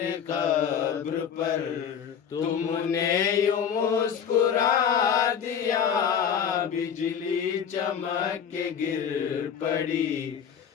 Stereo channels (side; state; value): right; quieter; 7.9 dB